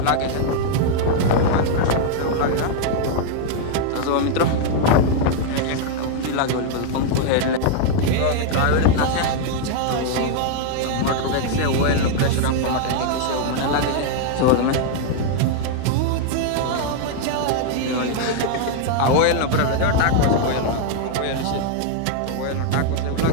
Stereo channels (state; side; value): different; both; correlation 0.00